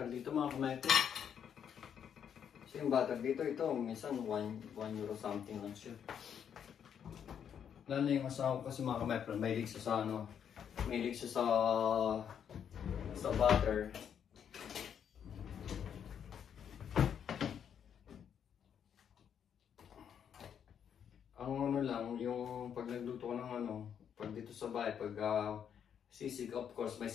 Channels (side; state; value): right; quieter; 8.3 dB